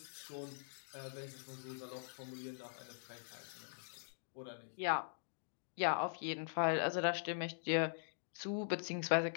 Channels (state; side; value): silent; right; digital silence